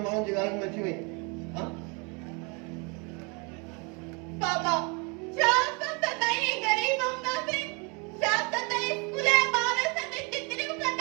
माण्हुनि जी ॻाल्हियुनि में अची वई हाँ? बाबा शाम तक नहीं गरीब होंदा से शाम तक स्कूले बार संग चित्रियूं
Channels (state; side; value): quieter; left; 31.8 dB